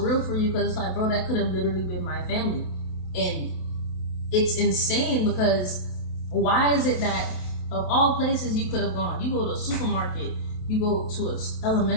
for you, because it's like, bro, that could have literally been my family. And it's insane, because why is it that of all places you could have gone, you go to a supermarket, you go to an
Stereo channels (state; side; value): late; right; 27 ms